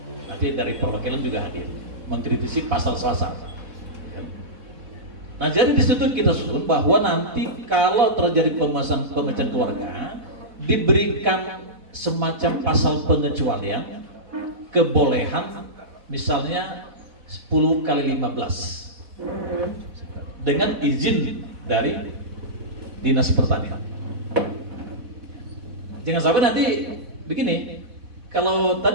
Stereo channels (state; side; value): late; left; 4.1 ms